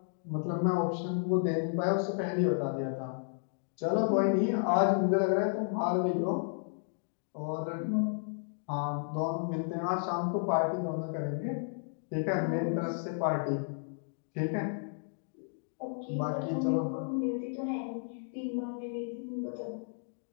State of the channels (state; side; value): silent; right; digital silence